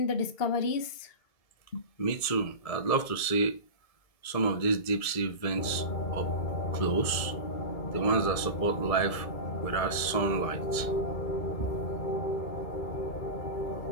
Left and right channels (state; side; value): late; right; 1.7 ms